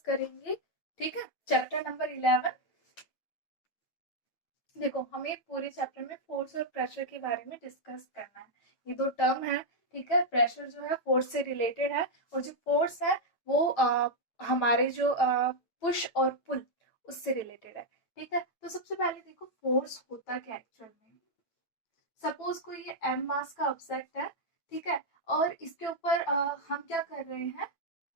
करेंगे। ठीक है, चैप्टर नंबर 11। देखो, हमें पूरे चैप्टर में फोर्स और प्रेशर के बारे में डिस्कस करना है। ये दो टर्म है। ठीक है, प्रेशर जो है फोर्स से रिलेटेड है, और जो फोर्स है वो हमारे जो पुश और पुल उससे रिलेटेड है। ठीक है, तो सबसे पहले देखो फोर्स होता क्या एक्चुअल में। सपोज कोई ये एम मास का ऑब्जेक्ट है। ठीक है, और इसके ऊपर हम क्या कर रहे हैं,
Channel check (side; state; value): right; late; 9.1 ms